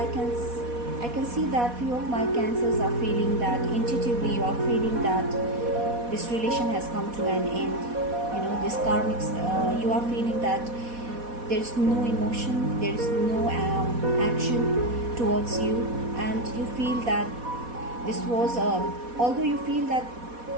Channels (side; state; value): left; late; 4.1 ms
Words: can see that few of my Cancers are feeling that intuitively you are feeling that this relation has come to an end. This karmic, you are feeling that there is no emotion, there is no action towards you, and you feel that this was although you feel that